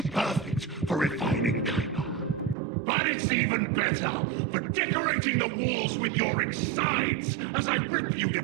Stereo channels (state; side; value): drops out; left; at 2.6 s